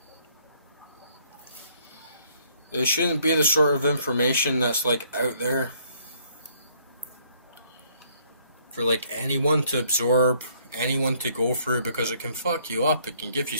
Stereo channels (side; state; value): both; inverted; correlation -0.65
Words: It shouldn't be the sort of information that's like out there for like anyone to absorb, anyone to go through, because it can fuck you up. It can give you